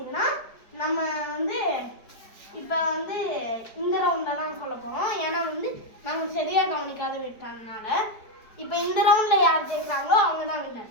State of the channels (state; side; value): late; right; 4.9 ms